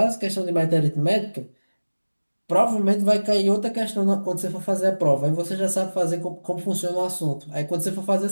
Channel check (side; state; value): both; inverted; correlation -1.00